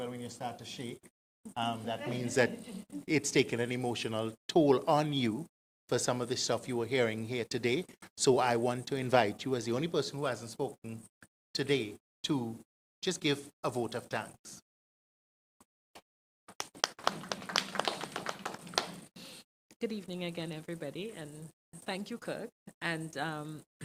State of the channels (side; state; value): both; identical; correlation 1.00